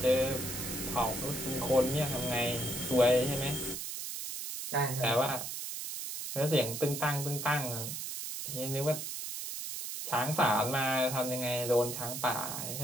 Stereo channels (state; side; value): noise; right; hiss, 6 dB below the sound